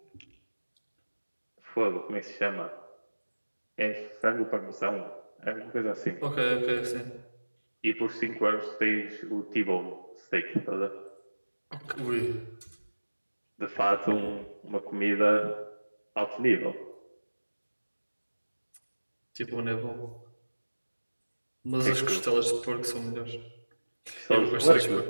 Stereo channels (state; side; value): inverted; both; correlation -1.00